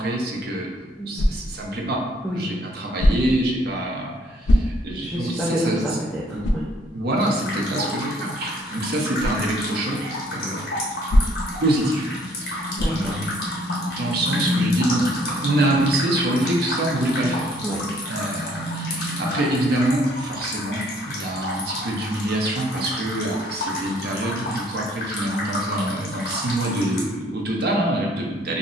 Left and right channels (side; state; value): both; normal; correlation 0.63